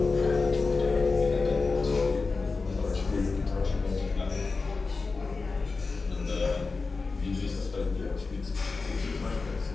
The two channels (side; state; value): right; quieter; 4.1 dB